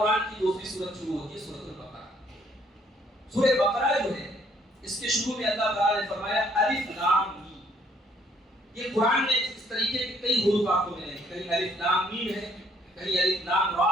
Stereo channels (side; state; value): both; normal; correlation 0.65